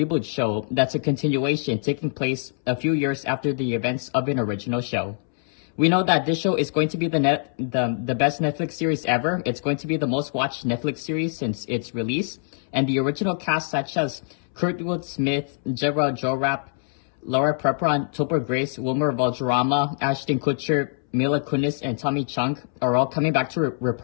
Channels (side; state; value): right; silent; 63 dB below the other